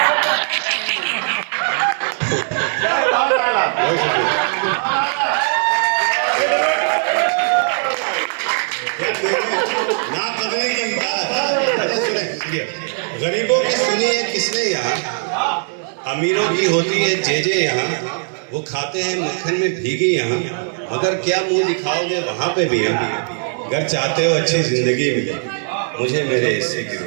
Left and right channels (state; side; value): silent; left; 65 dB below the other